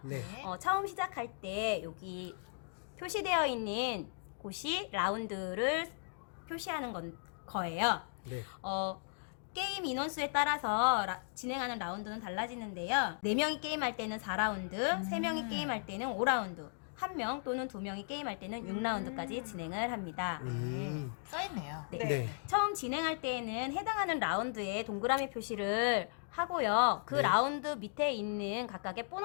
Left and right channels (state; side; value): silent; right; digital silence